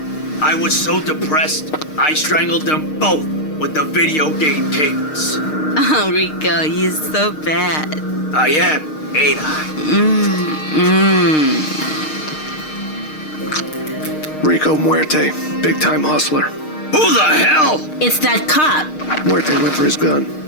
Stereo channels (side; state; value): right; late; 6.5 ms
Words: I was so depressed, I strangled them both with the video game cables. Oh, Rico, you're so bad. I am, ain't I? Rico Muerte, big-time hustler. Who the hell? It's that cop. Muerte went for his gun.